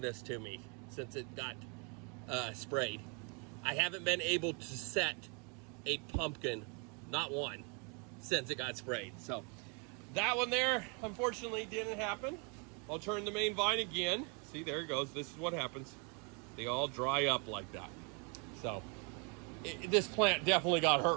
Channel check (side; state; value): left; quieter; 34.7 dB